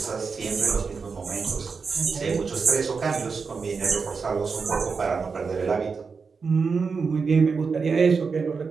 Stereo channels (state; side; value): quieter; left; 5.1 dB